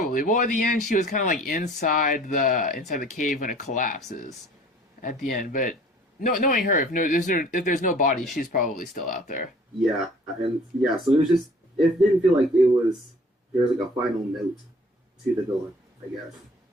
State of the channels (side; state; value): both; normal; correlation 0.51